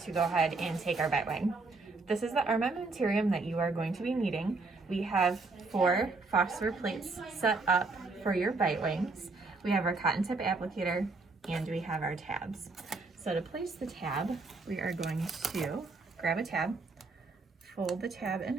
go ahead and take our Bitewing. This is the armamentarium that you are going to be needing. We have 4 phosphor plates set up for your Bitewings. We have our cotton tip applicator, and we have our tabs. So to place the tab, we are going to grab a tab, fold the tab in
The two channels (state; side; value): quieter; left; 3.7 dB